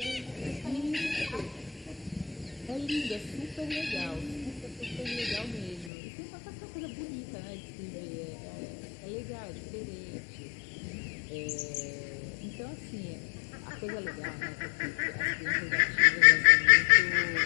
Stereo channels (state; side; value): drops out; right; at 5.9 s